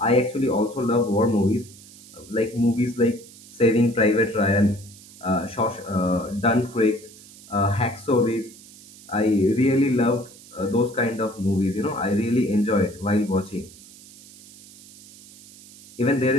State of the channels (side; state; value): right; noise; hiss, 21 dB below the sound